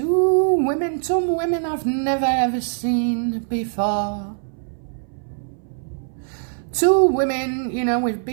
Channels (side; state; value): left; silent; 61 dB below the other